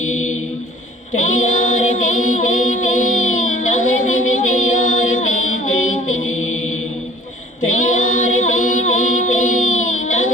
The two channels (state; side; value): normal; both; correlation 0.51